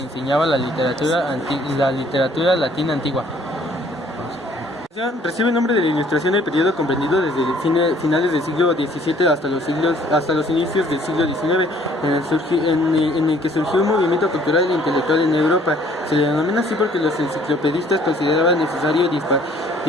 enseñaba la literatura latina antigua. Recibe el nombre de la Ilustración del periodo comprendido desde finales del siglo XVII hasta los inicios del siglo XIX, en el que surgió un movimiento cultural e intelectual en Europa. Se le denomina así porque los enciclopedistas consideraban necesario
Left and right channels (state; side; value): normal; both; correlation 0.59